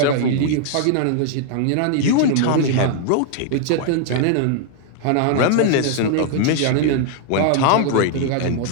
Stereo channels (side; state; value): both; different; correlation 0.00